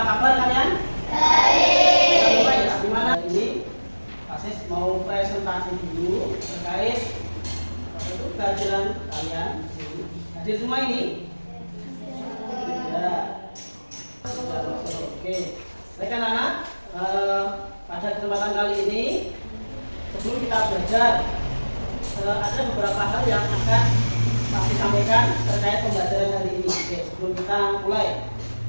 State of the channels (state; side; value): inverted; both; correlation -1.00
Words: kabar kalian? Baik. Gimana ini? Pasis mau presentasi dulu terkait pelajaran kalian. Hadir semua ini? Ya. Oke. Baik anak-anak, pada kesempatan kali ini sebelum kita belajar ada beberapa hal yang akan Pak sampaikan terkait pembelajaran hari ini. Oke, sebelum kita mulai,